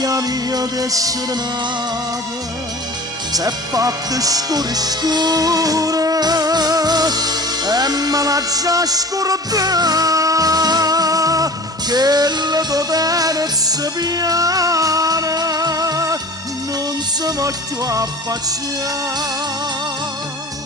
a mia d'essere nata s'è fatta scura e me la già scordata che la tua tenerezza piana non si va più a affacciare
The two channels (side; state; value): both; normal; correlation 0.40